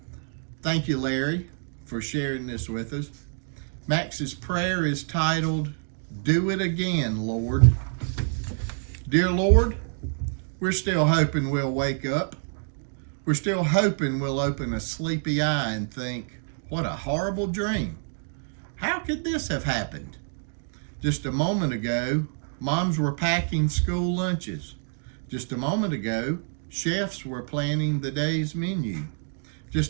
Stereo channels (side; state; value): left; silent; 60 dB below the other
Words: Thank you, Larry, for sharing this with us. Max's prayer is titled, "Do It Again, Lord." Dear Lord, we're still hoping we'll wake up. We're still hoping we'll open a sleepy eye and think, what a horrible dream. How could this have happened? Just a moment ago, moms were packing school lunches. Just a moment ago, chefs were planning the day's menu.